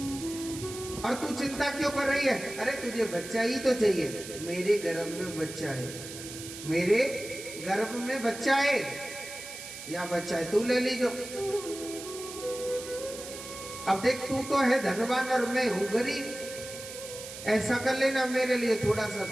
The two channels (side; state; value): right; noise; hiss, 11 dB below the sound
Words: और तू चिंता क्यों कर रही है? अरे तुझे बच्चा ही तो चाहिए। मेरे गर्भ में बच्चा है, मेरे गर्भ में बच्चा है, या बच्चा है तू ले लीजो। अब देख, तू तो है धनवान और मैं हूं गरीब, ऐसा कर लेना, मेरे लिए थोड़ा सा